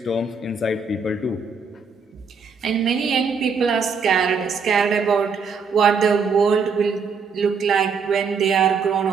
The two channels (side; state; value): left; quieter; 5.3 dB